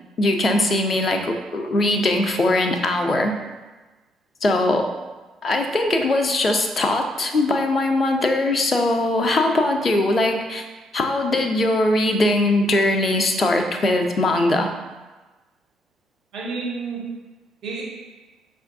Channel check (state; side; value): normal; both; correlation 0.74